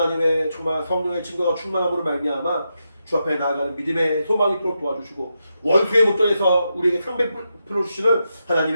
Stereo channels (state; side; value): inverted; both; correlation -0.86